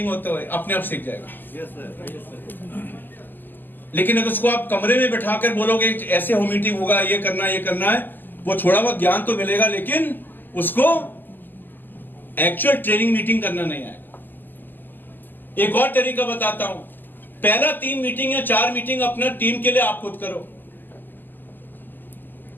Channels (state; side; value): late; right; 0.090 ms